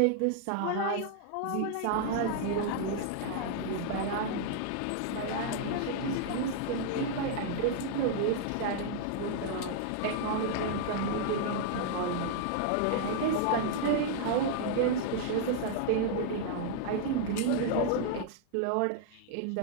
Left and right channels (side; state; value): both; different; correlation -0.01